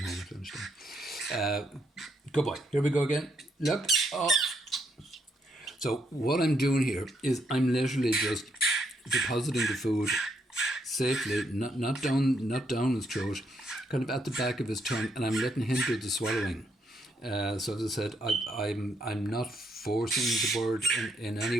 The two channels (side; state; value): both; normal; correlation 0.75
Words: home at lunchtime. Good boy. Here we go again. Look. Oh. So what I'm doing here is I'm literally just depositing the food safely, not down his throat, kind of at the back of his tongue, and I'm letting him do the swallowing. So as I said, I'm not forcing the bird in